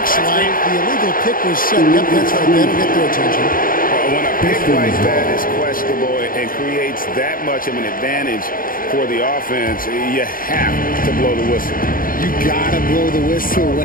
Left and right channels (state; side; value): late; right; 0.41 ms